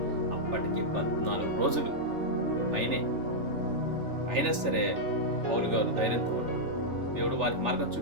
అప్పటికి 14 రోజులు పైనే. అయినా సరే పౌలు గారు ధైర్యంతో ఉన్నాడు. దేవుడు వారికి మార్గం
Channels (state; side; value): late; left; 3.4 ms